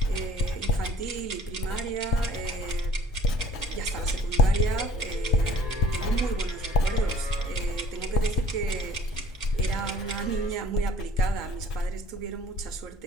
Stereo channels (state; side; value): normal; both; correlation 0.50